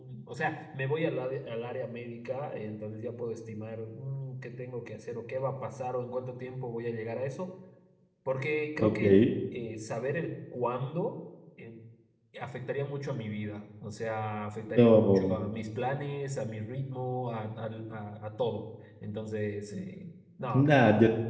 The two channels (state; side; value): identical; both; correlation 1.00